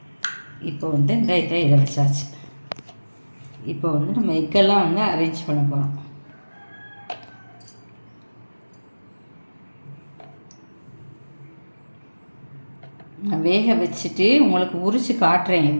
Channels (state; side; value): inverted; both; correlation -1.00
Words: இப்போ இந்த இதை வச்சாச்சு. இப்போ நம்ம எக்கெல்லாம் அரேஞ்ச் பண்ண போகிறோம். நான் வேக வச்சுட்டு உங்களுக்கு உரித்து காட்டுறேன்